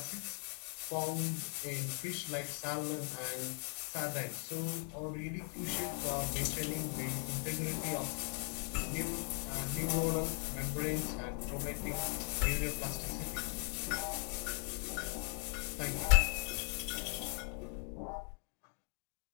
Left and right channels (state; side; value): quieter; right; 36.0 dB